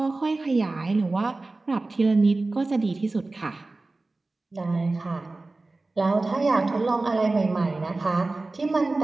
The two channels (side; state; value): left; quieter; 3.2 dB